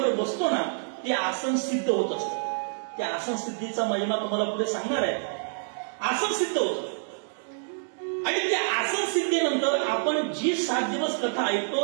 बसतो ना, ते आसन सिद्ध होत असतं. त्या आसन सिद्धीचा महिमा तुम्हाला पुढे सांगणार आहे. आसन सिद्ध होतं आणि त्या आसन सिद्धीनंतर आपण जी 7 दिवस कथा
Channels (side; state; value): left; silent; digital silence